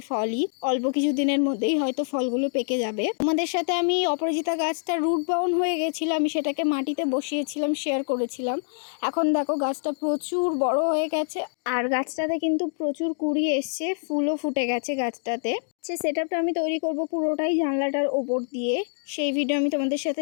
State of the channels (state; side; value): silent; right; digital silence